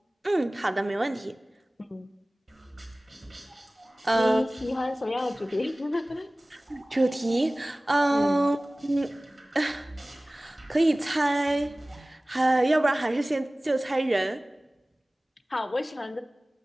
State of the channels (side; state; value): both; normal; correlation 0.98